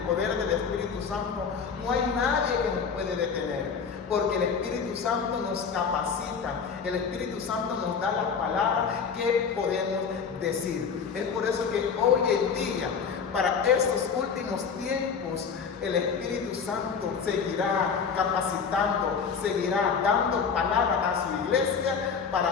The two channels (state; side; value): quieter; right; 6.1 dB